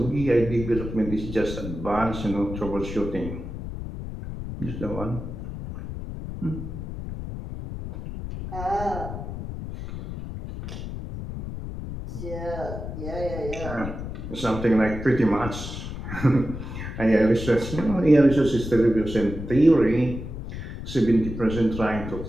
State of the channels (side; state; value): left; noise; rumble, 8 dB below the sound